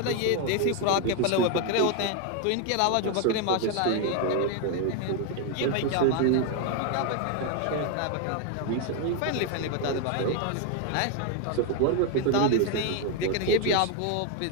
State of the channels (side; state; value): both; different; correlation 0.01